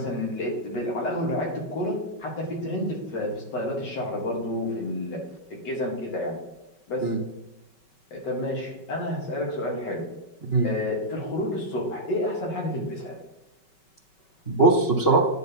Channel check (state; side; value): late; right; 5.3 ms